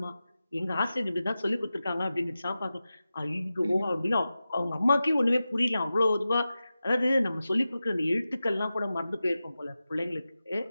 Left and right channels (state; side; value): inverted; both; correlation -0.94